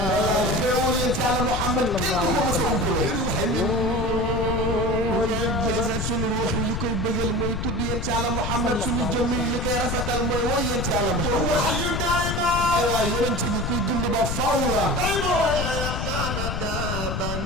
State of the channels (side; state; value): left; noise; rumble, 2 dB below the sound